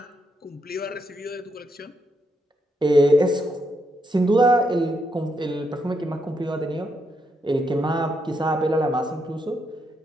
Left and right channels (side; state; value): both; normal; correlation 0.79